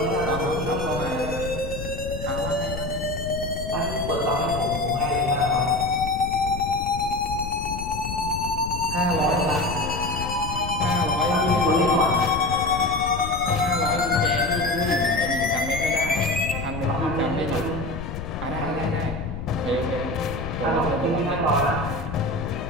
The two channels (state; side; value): noise; left; rumble, 7 dB below the sound